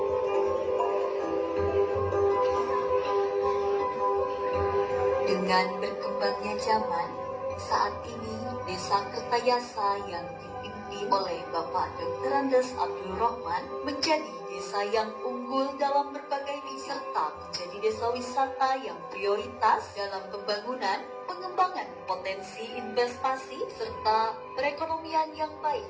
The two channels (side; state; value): both; identical; correlation 1.00